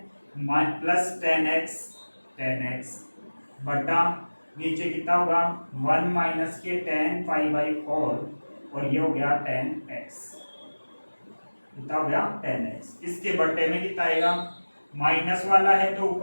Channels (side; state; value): both; inverted; correlation -1.00